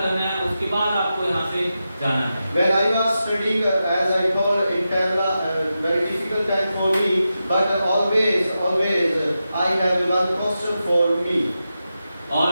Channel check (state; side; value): inverted; both; correlation -0.90